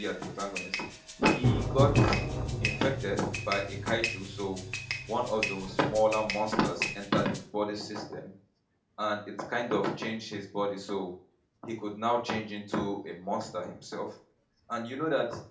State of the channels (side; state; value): both; identical; correlation 1.00